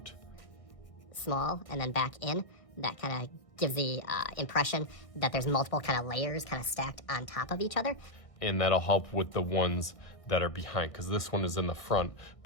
Small and then back in. That kind of gives the impression that there's multiple kind of layers kind of stacked on top of each other. And that'll help with the ones that are behind, because this one is in the front,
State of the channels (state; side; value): late; right; 1.6 ms